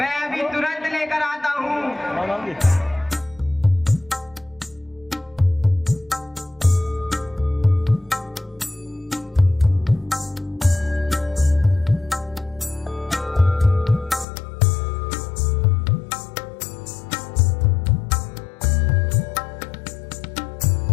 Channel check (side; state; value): right; drops out; at 14.2 s